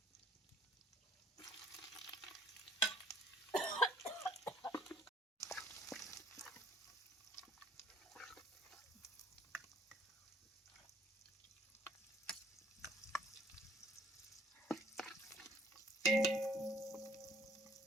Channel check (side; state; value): both; normal; correlation 0.59